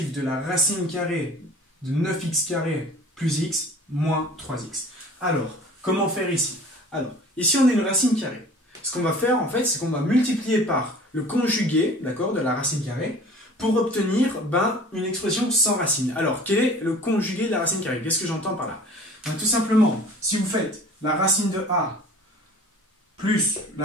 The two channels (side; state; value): both; normal; correlation 0.45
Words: de la racine carrée de 9x carré plus x moins 3x? Alors, comment faire ici? Alors, ici on a une racine carrée. Ce qu'on va faire en fait, c'est qu'on va multiplier par le conjugué, d'accord, de la racine carrée, pour obtenir une expression sans racine. Alors, quel est le conjugué de la racine carrée? Qu'est-ce que j'entends par là? Tout simplement, si vous faites la racine de a plus